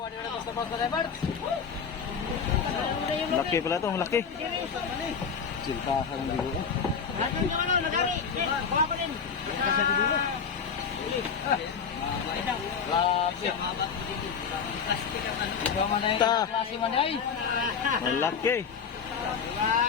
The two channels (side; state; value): right; quieter; 6.4 dB